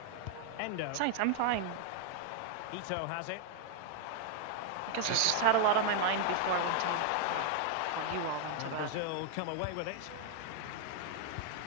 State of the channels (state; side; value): different; both; correlation -0.01